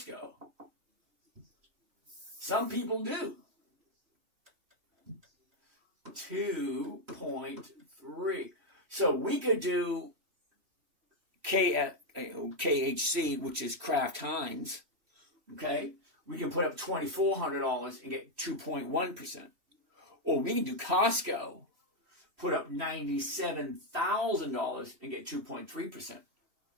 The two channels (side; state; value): left; late; 3.1 ms